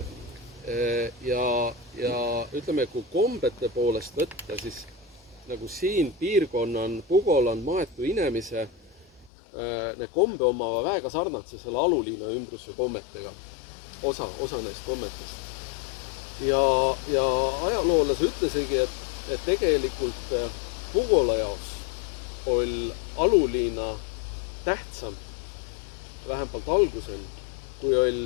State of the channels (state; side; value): drops out; right; at 9.3 s